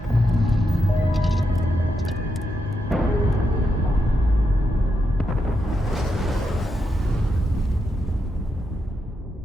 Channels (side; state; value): both; normal; correlation 0.84